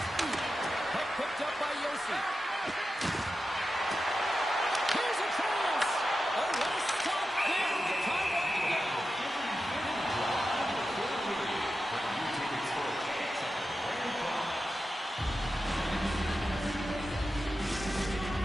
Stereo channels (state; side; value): normal; both; correlation 0.91